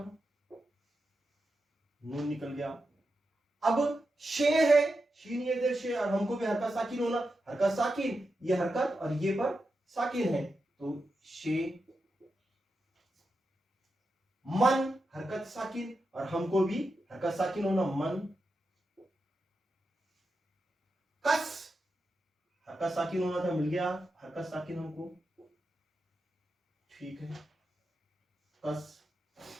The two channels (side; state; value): both; normal; correlation 0.89